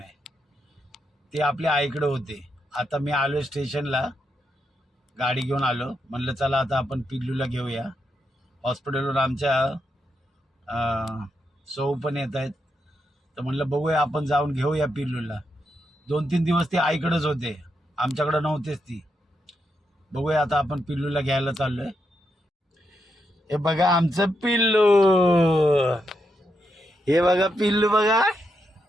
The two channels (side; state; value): both; normal; correlation 0.82